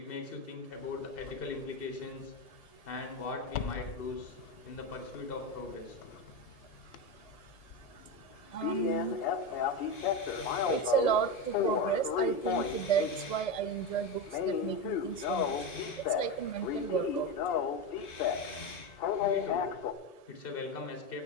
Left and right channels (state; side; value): late; right; 1.7 ms